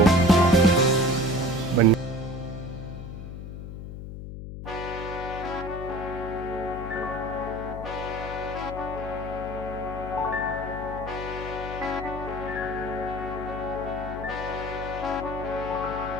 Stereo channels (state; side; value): noise; left; hum, 9 dB below the sound